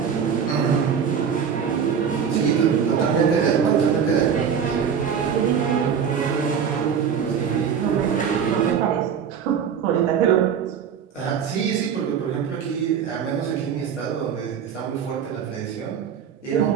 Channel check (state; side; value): quieter; left; 7.4 dB